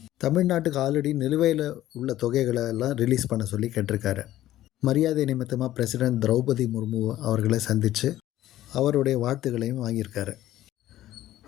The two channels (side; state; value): right; quieter; 13.9 dB